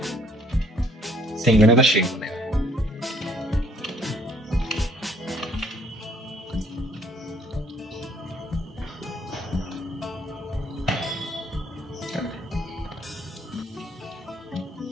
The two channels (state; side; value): normal; both; correlation 0.63